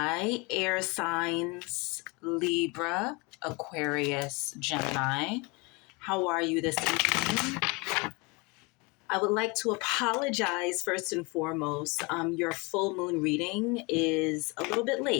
air signs, Libra, Aquarius, Gemini. How are you this evening? I would like to apologize first and foremost. Your full moon reading is a little bit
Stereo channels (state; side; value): quieter; right; 27.9 dB